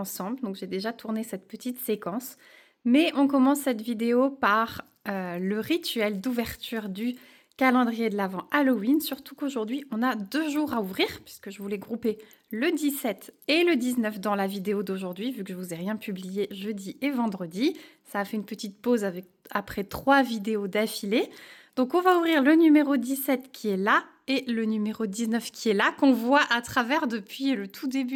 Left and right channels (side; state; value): both; identical; correlation 1.00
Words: donc j'ai déjà tourné cette petite séquence. Mais on commence cette vidéo par le rituel d'ouverture du calendrier de l'Avent Halloween. Surtout qu'aujourd'hui, on a 2 jours à ouvrir, puisque je voulais grouper le 17 et le 19 dans la vidéo d'aujourd'hui, vu que je vous ai rien publié jeudi et vendredi. Ça a fait une petite pause après 3 vidéos d'affilée. Donc on va ouvrir le numéro 17 qui est là et le numéro 19 qui est là, qu'on voit à travers depuis le tout